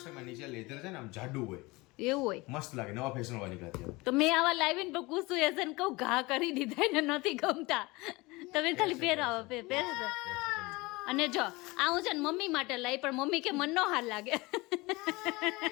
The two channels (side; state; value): right; quieter; 23.0 dB